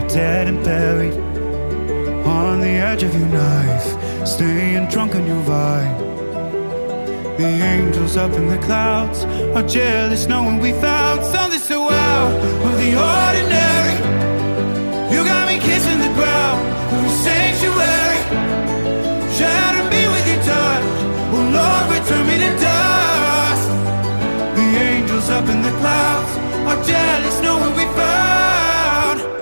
dead and buried, on the edge of your knife, staying drunk on your vine. The angels up in the clouds are jealous knowing we found something so out of the ordinary. You got me kissing the ground in a sanctuary, shatter me with your touch, oh Lord, return me to dust. The angels up in the clouds are jealous knowing we found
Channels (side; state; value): both; inverted; correlation -1.00